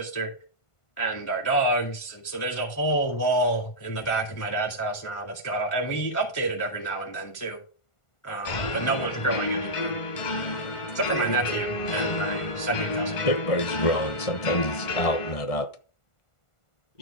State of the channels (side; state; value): right; late; 1.4 ms